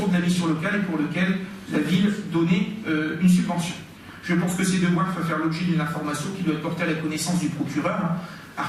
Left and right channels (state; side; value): identical; both; correlation 1.00